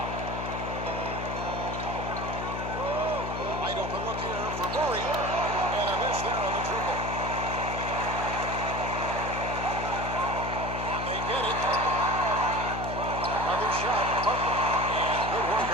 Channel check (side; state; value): left; noise; hum, 5 dB below the sound